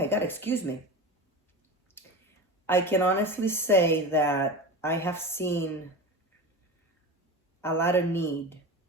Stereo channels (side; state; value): both; normal; correlation 0.28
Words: God, excuse me. I can honestly say that I have seen a lot of need